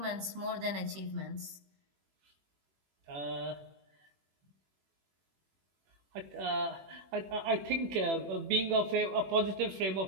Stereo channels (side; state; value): left; late; 21 ms